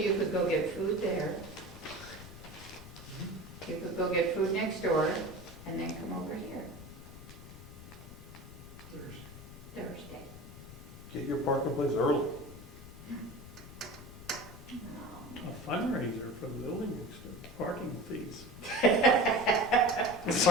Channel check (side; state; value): left; noise; rumble, 15 dB below the sound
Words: could go get food there. You could go get food next door, and then come over here Thursday. Get your parking place early. A fundraiser for the building next door, parking fees.